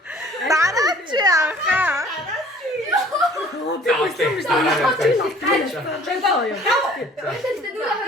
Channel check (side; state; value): both; normal; correlation 0.52